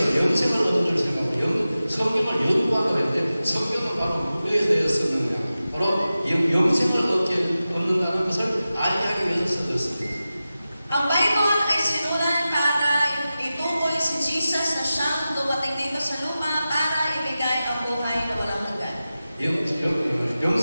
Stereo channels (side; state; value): both; inverted; correlation -0.94